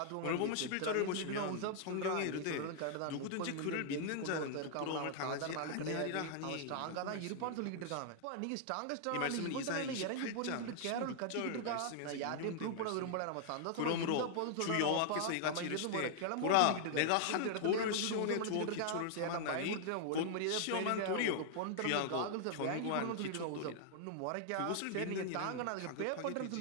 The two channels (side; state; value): both; different; correlation -0.01